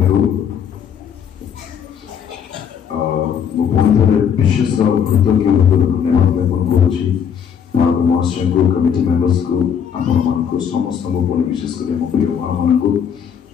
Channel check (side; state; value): right; quieter; 7.9 dB